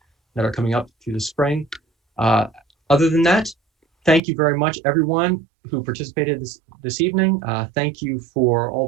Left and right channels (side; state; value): left; drops out; at 4.2 s